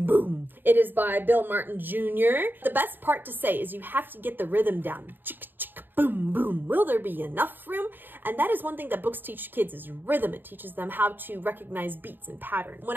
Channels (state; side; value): late; left; 0.093 ms